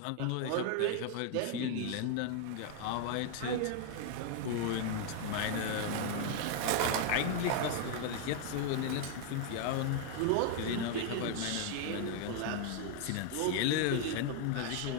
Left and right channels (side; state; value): both; different; correlation 0.00